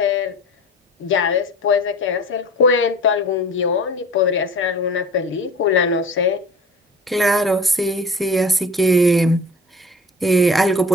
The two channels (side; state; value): both; normal; correlation 0.40